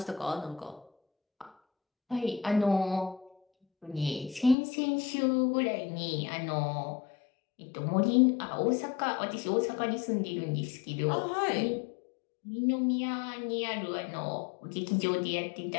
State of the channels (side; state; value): right; drops out; at 4.5 s